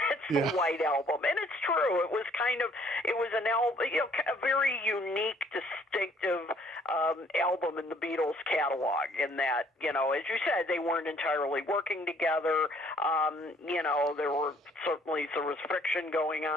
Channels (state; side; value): normal; both; correlation 0.61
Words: It's the White Album. And it's true. It was an album, a very unique, distinctive album in the Beatles catalog, in that, as you said, they weren't entirely working together. There were certainly, there was friction going